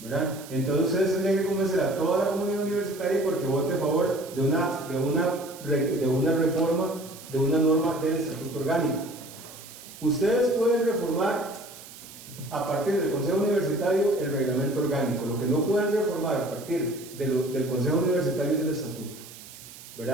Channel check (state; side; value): noise; right; hiss, 17 dB below the sound